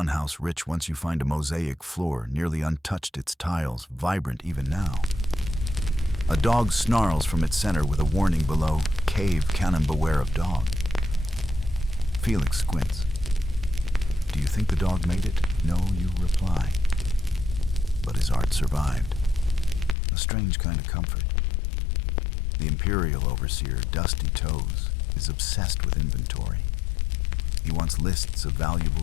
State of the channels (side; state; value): right; drops out; at 20.0 s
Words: house rich, once you find a mosaic floor, nearly untouched, its tiles vibrant even now. A dog snarls from its center with a warning below, "Cave cannon, beware of dog." Felix squints. Do you think the dog made it? No, you reply. But his art survived. A strange kind of comfort. The imperial overseer, Dusty Toes, is obsessed with inventory. He wants lists of